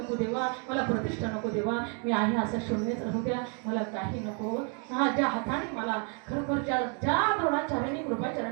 देवा, मला प्रतिष्ठा नको देवा. मी आहे असं शून्यच राहू द्या, मला काही नको. हा, ज्या हाताने मला खरोखर ज्या द्रोणाचार्याने,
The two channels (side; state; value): left; quieter; 39.7 dB